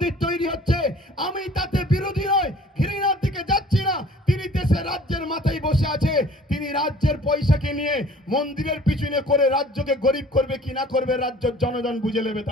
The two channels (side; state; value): both; normal; correlation 0.50